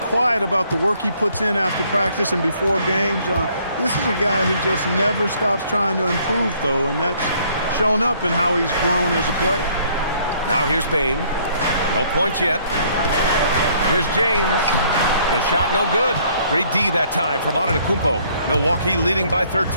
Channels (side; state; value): both; inverted; correlation -0.63